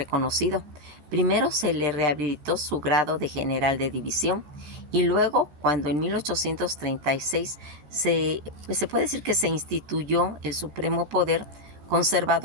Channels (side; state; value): left; late; 13 ms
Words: Primero se le rehabilitó su grado de general de división y luego, cuando en 1836 se puede decir que se instituyó el supremo poder